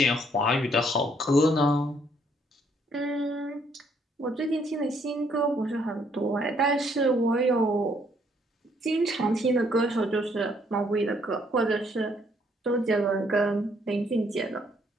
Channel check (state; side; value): normal; both; correlation 0.68